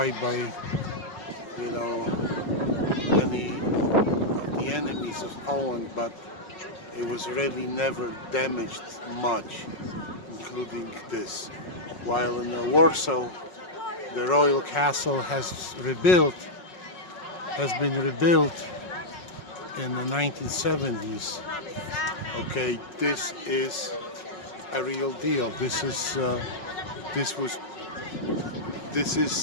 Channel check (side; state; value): right; late; 5.5 ms